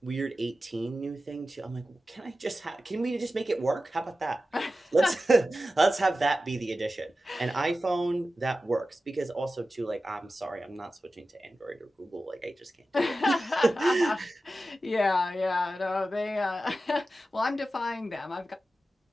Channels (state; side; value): normal; both; correlation 0.93